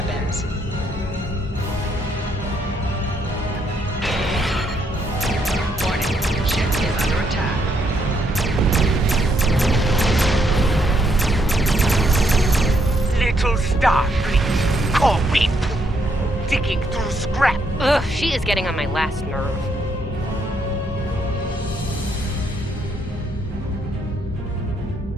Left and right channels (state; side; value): normal; both; correlation 0.74